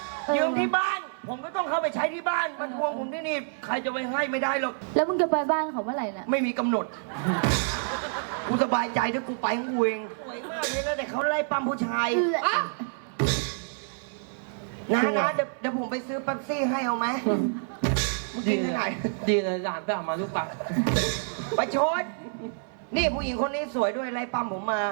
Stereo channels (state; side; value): silent; left; 60 dB below the other